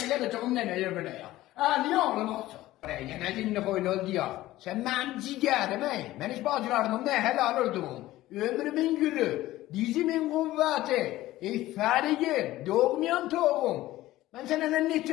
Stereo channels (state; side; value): quieter; right; 16.1 dB